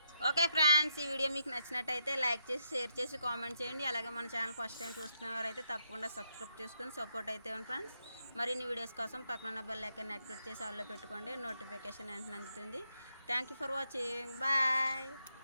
ఓకే ఫ్రెండ్స్, ఈ వీడియో మీకు నచ్చినట్టయితే లైక్ చేసి షేర్ చేసి కామెంట్ చేయండి. అలాగే మన ఛానల్ ఫస్ట్ టైం చూస్తున్నవారైతే తప్పకుండా సబ్స్క్రైబ్ చేసుకొని సపోర్ట్ అయితే ఫ్రెండ్స్. మరిన్ని వీడియోస్ కోసం పక్కన బెల్ ఐకాన్ యాక్టివేట్ చేసి ఆల్లో పెట్టుకోండి. నోటిఫికేషన్ వెంటనే అందుతుంది. Thank you for watching. Bye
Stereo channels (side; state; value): both; inverted; correlation -0.81